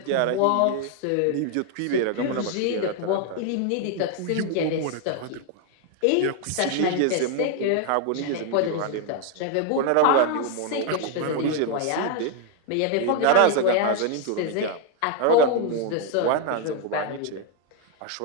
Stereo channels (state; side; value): different; both; correlation 0.00